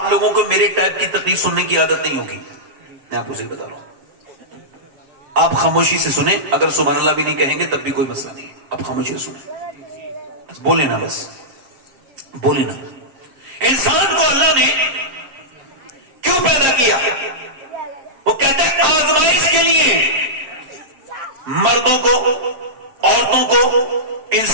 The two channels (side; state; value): left; late; 7.4 ms